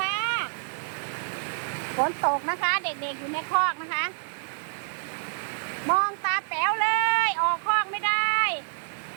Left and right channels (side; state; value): left; silent; digital silence